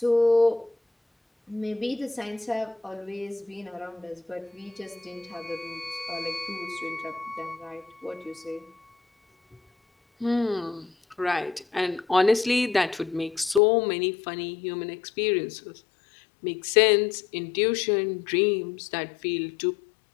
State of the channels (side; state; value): right; drops out; at 13.6 s